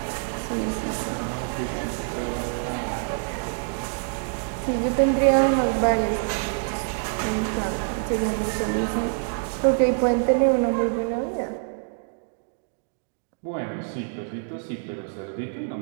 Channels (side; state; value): left; silent; 61 dB below the other